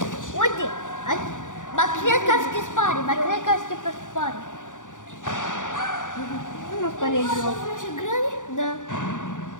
uite. Ba cred că se spare, pe spare. Nu spune joc. Ce grăni? Da.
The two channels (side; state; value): right; late; 0.87 ms